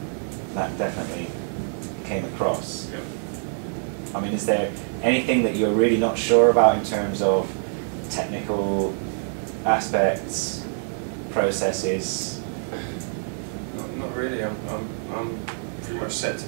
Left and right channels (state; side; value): silent; left; 60 dB below the other